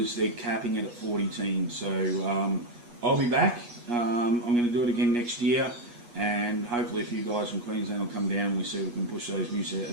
they're capping it at 40 teams. So I'll be back. I'm going to do it again next year, and hopefully a few guys from Queensland will come down and we see if we can push those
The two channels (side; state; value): left; late; 8.4 ms